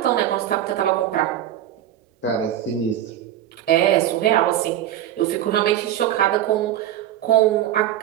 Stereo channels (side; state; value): left; quieter; 11.9 dB